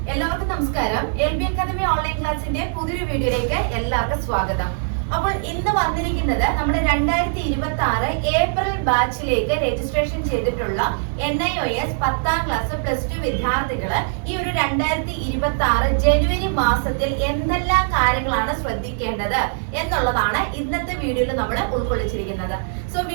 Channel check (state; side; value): silent; left; 59 dB below the other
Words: എല്ലാവർക്കും നമസ്കാരം. LB അക്കാദമി ഓൺലൈൻ ക്ലാസിന്റെ പുതിയൊരു വീഡിയോയിലേക്ക് എല്ലാവർക്കും സ്വാഗതം. അപ്പോൾ ഇന്ന് വന്നിരിക്കുന്നത് നമ്മുടെ 2026 ഏപ്രിൽ ബാച്ചിലേക്ക് രജിസ്ട്രേഷൻ ചെയ്തിട്ടുള്ള NIOS 10ാം ക്ലാസ് +2 വിദ്യാർത്ഥികള് ഈ ഒരു 2026 ജനുവരി മാസത്തിൽ എന്തെല്ലാം കാര്യങ്ങളാണ് ശ്രദ്ധിക്കേണ്ടത് എന്നുള്ളതാണ് ഇന്നത്തെ വീഡിയോയിൽ നമ്മൾ ഉൾക്കൊള്ളിച്ചിരിക്കുന്നത്. സോ